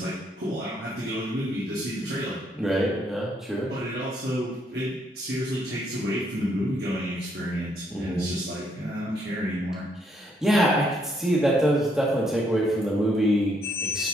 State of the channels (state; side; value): normal; both; correlation 0.72